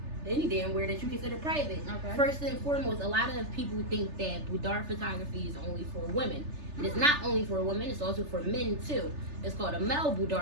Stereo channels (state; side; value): late; left; 3.3 ms